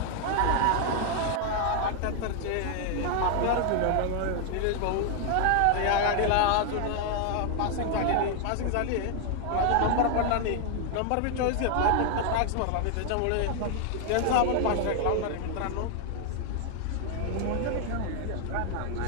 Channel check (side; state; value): both; different; correlation 0.00